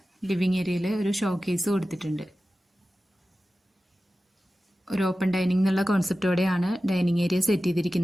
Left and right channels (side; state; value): both; normal; correlation 0.95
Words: ലിവിങ് ഏരിയയിൽ ഒരു ഷോക്കേസ് കൊടുത്തിട്ടുണ്ട്. ഒരു ഓപ്പൺ ഡൈനിങ് എന്നുള്ള കോൺസെപ്റ്റോടെയാണ് ഡൈനിങ് ഏരിയ സെറ്റ്